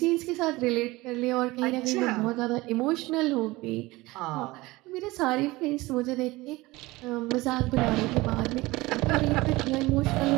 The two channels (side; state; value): left; quieter; 20.6 dB